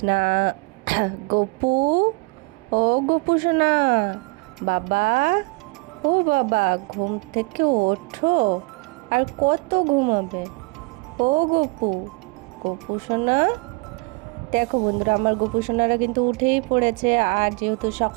গপু, ও গপু সোনা, বাবা, ও বাবা, ঘুম থেকে ওঠো। আর কত ঘুমাবে? ও গপু, গপু সোনা। দেখো বন্ধুরা, আমার গোপু সোনারা কিন্তু উঠেই পড়েছে। আর যেহেতু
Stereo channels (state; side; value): quieter; left; 27.7 dB